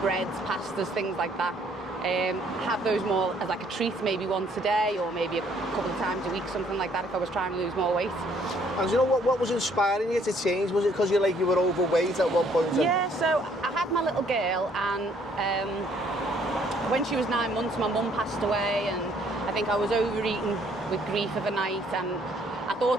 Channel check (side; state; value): both; normal; correlation 0.64